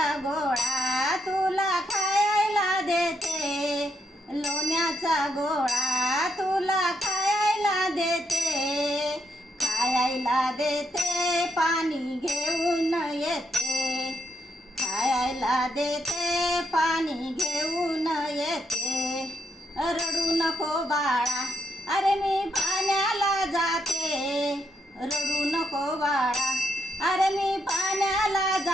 गोळा तुला खायला देते. लोण्याचा गोळा तुला खायला देते. खायला देते, पाणी घेऊन येते. खायला देते, पाणी घेऊन येते. रडू नको बाळा, अरे मी पाण्याला जाते. रडू नको बाळा, अरे मी पाण्याला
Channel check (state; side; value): normal; both; correlation 0.78